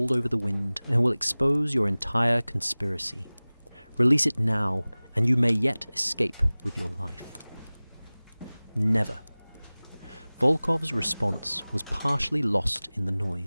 over the wind and will expose your entire conspiracy. Release it now, and you may yet escape with your life. Never. Volkov's response was partially lost in the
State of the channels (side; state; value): both; inverted; correlation -0.99